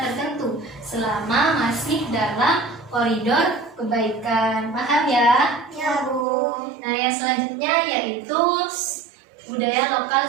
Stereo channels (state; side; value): drops out; left; at 6.2 s